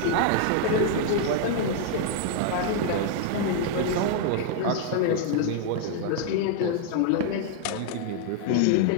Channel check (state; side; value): different; both; correlation 0.00